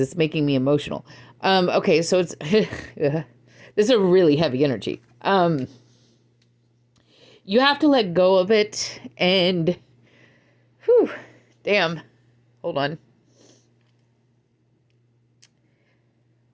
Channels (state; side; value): identical; both; correlation 1.00